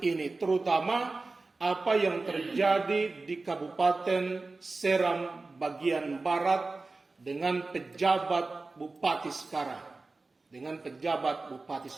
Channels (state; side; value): quieter; left; 3.6 dB